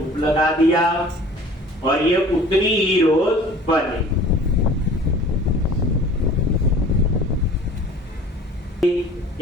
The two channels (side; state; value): both; normal; correlation 0.46